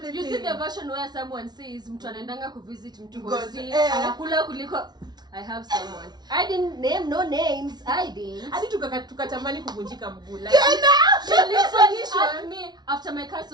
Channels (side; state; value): left; late; 0.20 ms